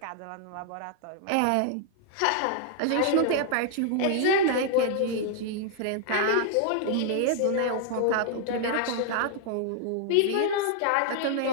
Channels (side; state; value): both; different; correlation 0.00